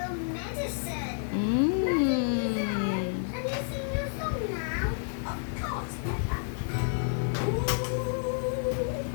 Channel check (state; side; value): silent; right; 58 dB below the other